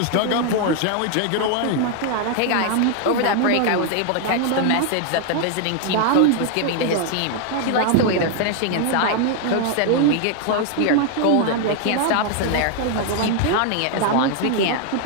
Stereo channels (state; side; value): different; both; correlation 0.00